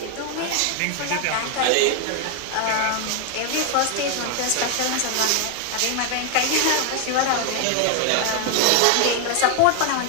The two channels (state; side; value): different; both; correlation 0.01